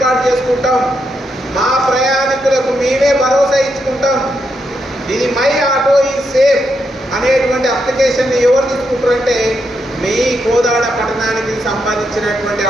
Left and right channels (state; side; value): normal; both; correlation 0.81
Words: చేసుకుంటాం, మా ప్రయాణికులకు మేమే భరోసా ఇచ్చుకుంటాం, ఇది మై ఆటో ఈజ్ సేఫ్ అనేటువంటి అప్లికేషన్ని ఎవరు తీసుకుంటారంటే మీ కోదాడ పట్టణానికి సంబంధించినటువంటి